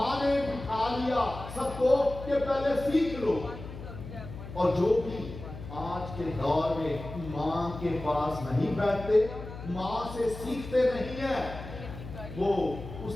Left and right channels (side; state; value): left; noise; hum, 12 dB below the sound